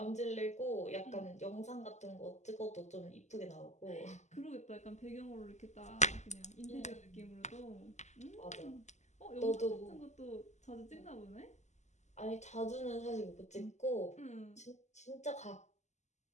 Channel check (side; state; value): right; late; 0.33 ms